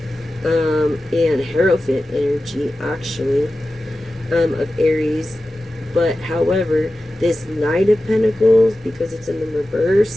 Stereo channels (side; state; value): both; normal; correlation 0.94